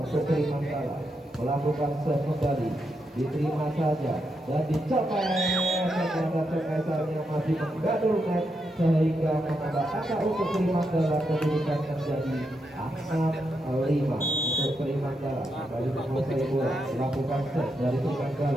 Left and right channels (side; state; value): both; normal; correlation 0.83